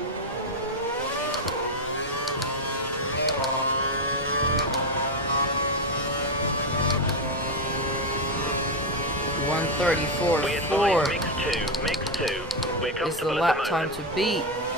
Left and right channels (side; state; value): both; normal; correlation 0.08